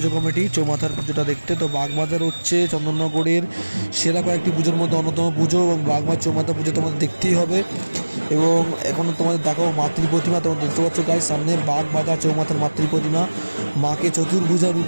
কমিটি চৌমাথার পুজোটা দেখতে। তো বাগবাজার হচ্ছে চন্দননগরের সেরা কয়েকটি পুজোর মধ্যে অন্যতম পুজো, এবং বাগবাজার চৌমাথা পুজো তোমাদের দেখতেই হবে। এবং এখন তোমাদের দেখাবো মাতৃ প্রতিমা। তোমরা দেখতে পাচ্ছ গাইস, সামনে বাগবাজার চৌমাথার মাতৃ প্রতিমা, মাকে চতুর্ভুজা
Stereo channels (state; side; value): inverted; both; correlation -1.00